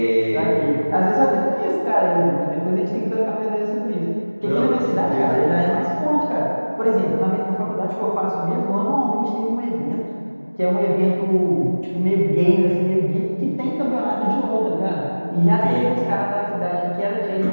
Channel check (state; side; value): inverted; both; correlation -1.00